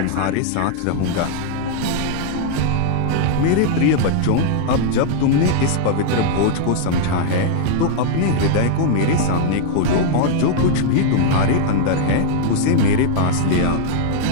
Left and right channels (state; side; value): different; both; correlation -0.01